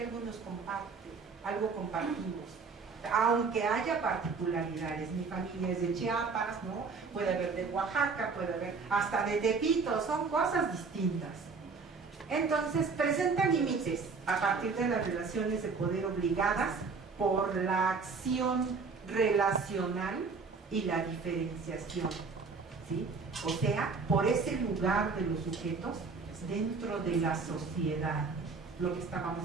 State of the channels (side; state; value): left; quieter; 4.7 dB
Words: algo nos comparte, algo compartimos. Aunque haya particularidades, mi familia es de Chiapas, ¿no? Puede haber de Oaxaca, puede haber hasta de Tepito, son cosas distintas. Entonces, presenta límites a partir de las relaciones de poder obligadas por la acción relacional y la diferenciación, ¿sí? O sea, por ese lugar de los sujetos dentro de la sociedad, lo que estábamos